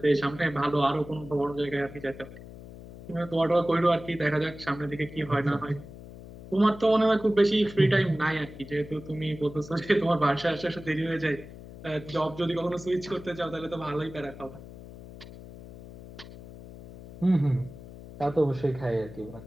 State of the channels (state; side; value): noise; left; hum, 16 dB below the sound